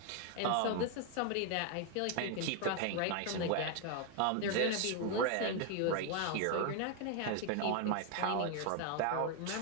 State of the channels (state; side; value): different; both; correlation 0.01